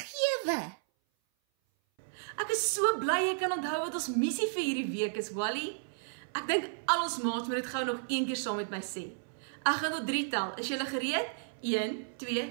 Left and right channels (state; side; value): silent; left; 56 dB below the other